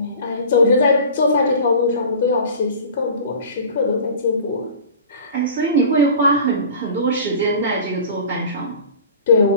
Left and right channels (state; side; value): inverted; both; correlation -0.40